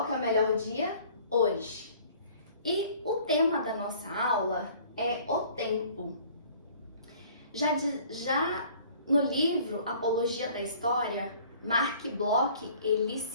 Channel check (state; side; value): inverted; both; correlation -0.52